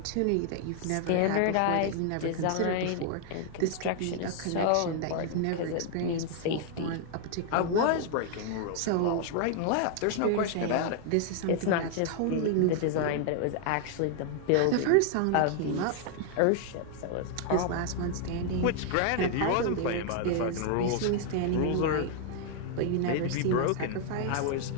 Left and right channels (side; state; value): both; different; correlation 0.00